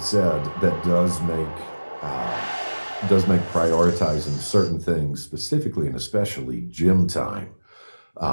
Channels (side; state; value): both; inverted; correlation -1.00